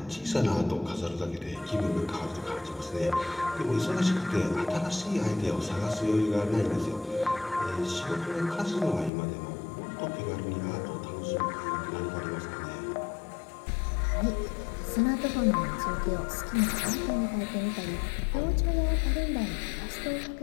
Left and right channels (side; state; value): right; drops out; at 9.1 s